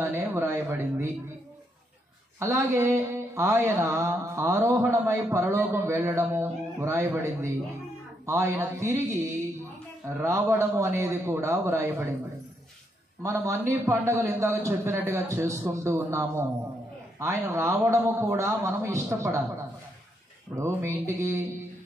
వ్రాయబడింది. అలాగే ఆయన ఆరోహణమై పరలోకం వెళ్ళడము వ్రాయబడింది. ఆయన తిరిగి రావడము అనేది కూడా వ్రాయబడింది. మనం అన్ని పండుగలు ఇందాక చెప్పినట్టుగా చేసుకుంటూ ఉన్నాము. ఆయన రావడము కూడా మనం ఇష్టపడాలి. ఇప్పుడు మీ ఇంటికి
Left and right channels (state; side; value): normal; both; correlation 0.77